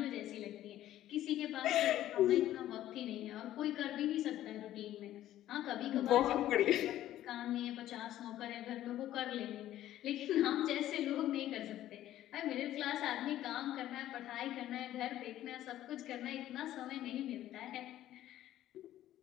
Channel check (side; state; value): right; quieter; 13.2 dB